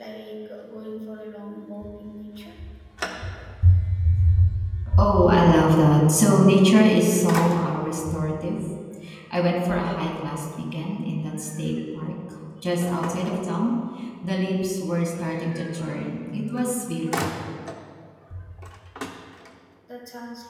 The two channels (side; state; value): both; identical; correlation 1.00